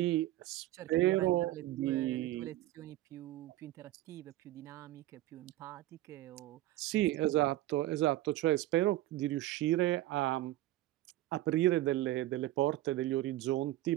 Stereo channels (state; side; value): quieter; left; 15.6 dB